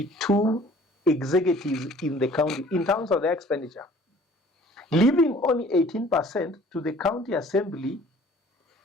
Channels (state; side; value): normal; both; correlation 0.52